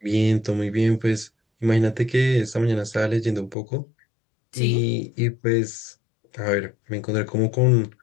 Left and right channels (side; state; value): right; drops out; at 3.6 s